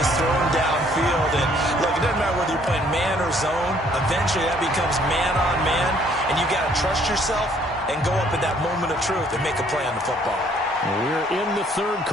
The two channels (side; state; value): both; normal; correlation 0.62